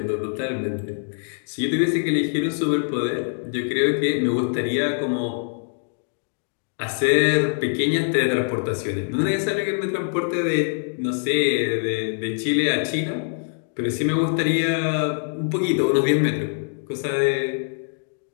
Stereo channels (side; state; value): right; silent; digital silence